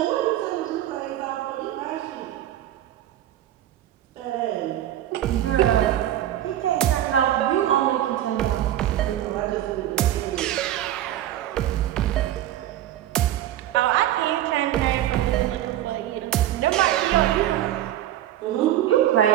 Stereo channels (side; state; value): left; quieter; 12.7 dB